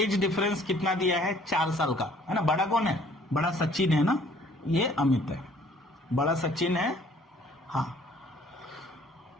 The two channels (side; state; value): both; normal; correlation 0.58